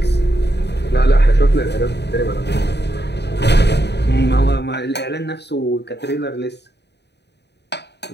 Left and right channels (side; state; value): right; late; 0.49 ms